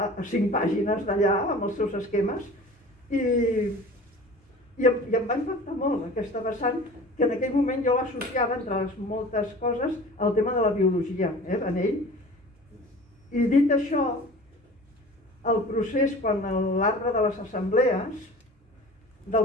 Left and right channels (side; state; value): both; normal; correlation 0.41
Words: 5 pàgines d'allà, amb els seus esquemes, i em va impactar molt aquesta vessant, que en aquell moment jo l'associava, entre les moltes coses, al tema de la biologia, en ell. I dit això, el procés, quan l'arbre de les assemblees,